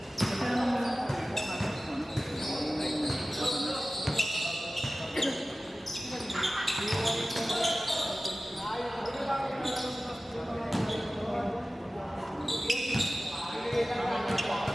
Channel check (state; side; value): normal; both; correlation 0.96